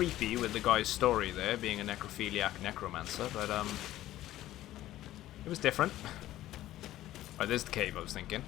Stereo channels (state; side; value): quieter; right; 14.5 dB